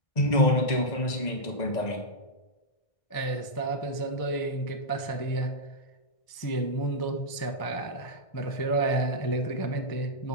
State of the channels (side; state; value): right; late; 1.6 ms